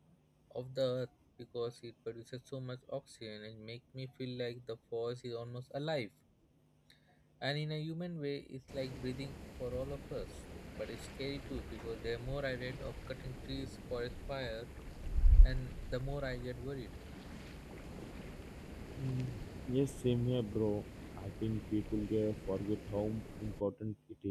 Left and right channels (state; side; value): identical; both; correlation 1.00